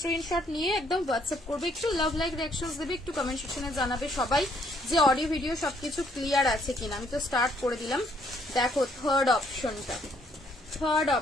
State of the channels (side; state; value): both; normal; correlation 0.67